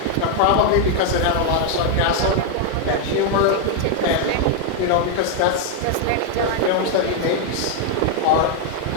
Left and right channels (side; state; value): both; different; correlation 0.00